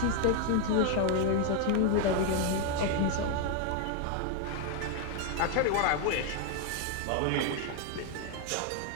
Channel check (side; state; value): both; different; correlation 0.00